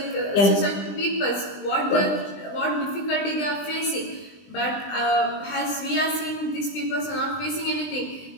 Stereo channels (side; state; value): right; late; 20 ms